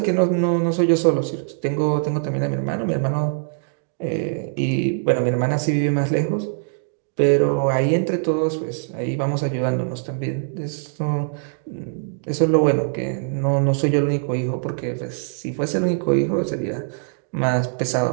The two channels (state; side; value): silent; left; digital silence